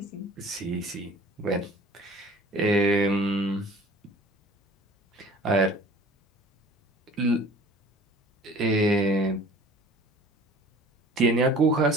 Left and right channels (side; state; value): both; normal; correlation 0.48